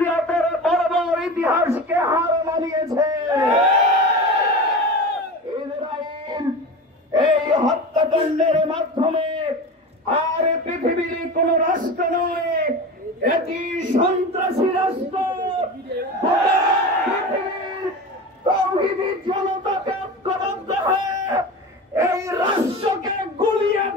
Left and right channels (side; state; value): both; normal; correlation 0.29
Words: বর্বর ইতিহাসকে হার মানিয়েছে। ইসরায়েল এই হত্যাকাণ্ডের মাধ্যমে আর পৃথিবীর কোন রাষ্ট্র নয়, এটি সন্ত্রাসী রাষ্ট্র। পৃথিবীর তাওহীদি জনতাকে ঐক্যবদ্ধ হয়ে এই রাষ্ট্রকে গুলিয়ে